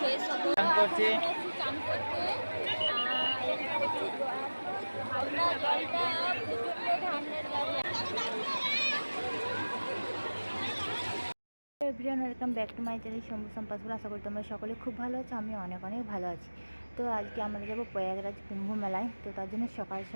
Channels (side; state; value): both; inverted; correlation -1.00